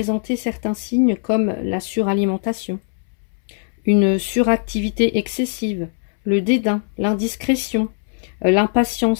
certains signes comme la suralimentation, une suractivité excessive, le dédain, l'indiscrétion,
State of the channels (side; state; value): right; silent; 66 dB below the other